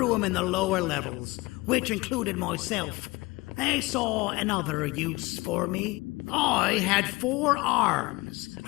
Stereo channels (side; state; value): right; quieter; 22.5 dB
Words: them in the lower levels, which included myself, they saw another use for me. I had 4 arms,